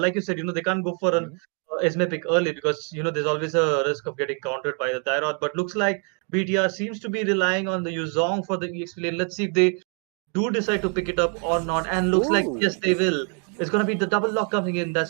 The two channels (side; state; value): left; quieter; 39.0 dB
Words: you said, they can't go for an Esme pick early, because there's always a risk of getting countered by the Tyrod. But looks like BTR seems to be relying on the Yuzong for the EXP lane. Let's see if they do decide to pick it up or not. And looks like, yes, they will. It's going to be the double lock coming in. That's